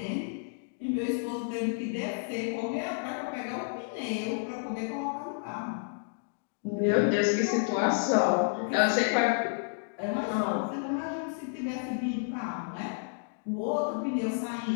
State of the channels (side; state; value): right; silent; digital silence